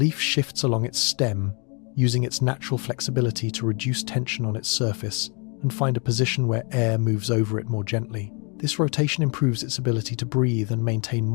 shifts along its stem, using its natural flexibility to reduce tension on its surface and find a position where air moves over it more gently. This rotation improves its ability to breathe and maintain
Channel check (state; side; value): quieter; right; 34.2 dB